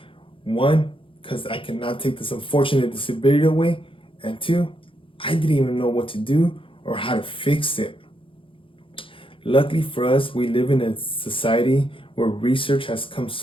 One, because I cannot take this unfortunate disability away, and two, I didn't even know what to do or how to fix it. Luckily for us, we live in a society where research has come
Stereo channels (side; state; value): right; late; 0.25 ms